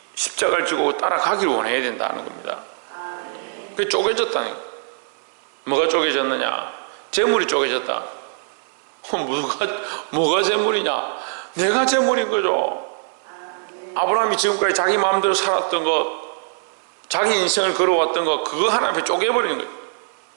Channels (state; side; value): silent; left; 64 dB below the other